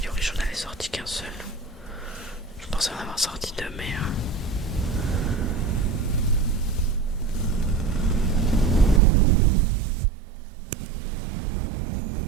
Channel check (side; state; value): left; drops out; at 9.0 s